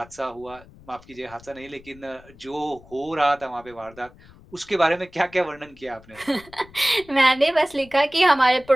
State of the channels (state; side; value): noise; left; rumble, 23 dB below the sound